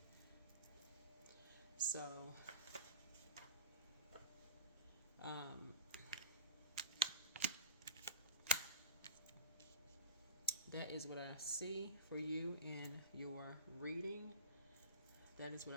So, that is what I see for you in your reading. That is what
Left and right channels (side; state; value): both; inverted; correlation -0.31